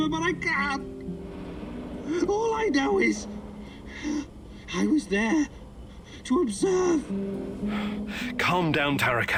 but I can't. All I know is I was there to observe. Calm down,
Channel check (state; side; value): identical; both; correlation 1.00